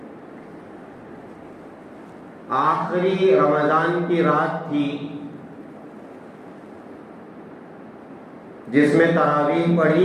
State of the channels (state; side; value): identical; both; correlation 1.00